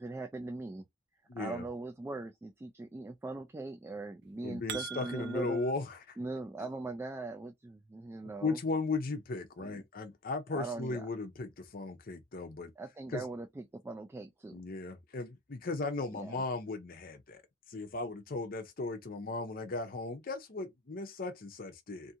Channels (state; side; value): normal; both; correlation 0.40